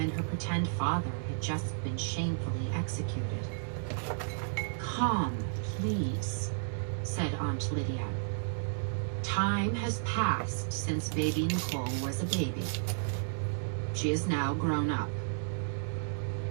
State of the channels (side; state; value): left; silent; 56 dB below the other